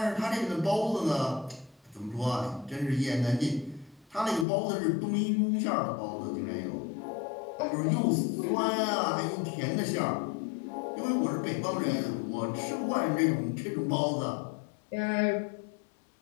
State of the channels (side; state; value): right; drops out; at 4.5 s